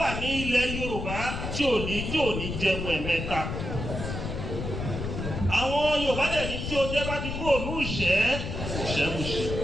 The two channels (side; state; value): left; noise; rumble, 5 dB below the sound